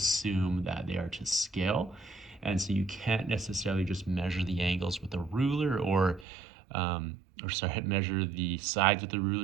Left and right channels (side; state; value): left; drops out; at 6.2 s